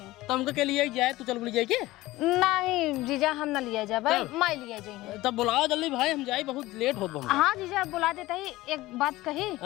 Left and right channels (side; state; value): right; quieter; 18.1 dB